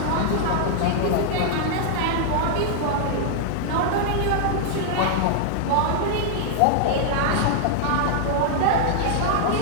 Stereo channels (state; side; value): different; both; correlation -0.01